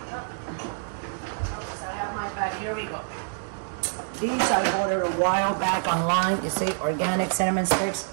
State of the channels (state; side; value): silent; left; digital silence